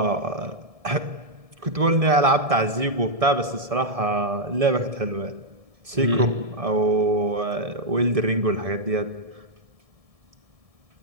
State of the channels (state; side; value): late; left; 1.7 ms